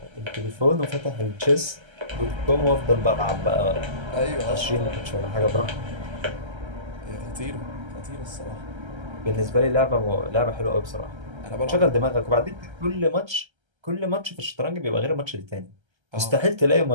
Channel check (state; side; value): late; left; 1.3 ms